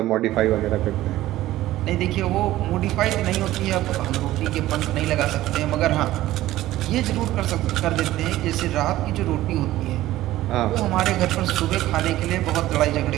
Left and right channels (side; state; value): left; quieter; 15.3 dB